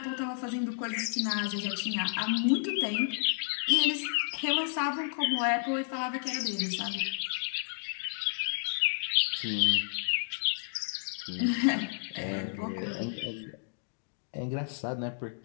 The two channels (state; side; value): silent; right; digital silence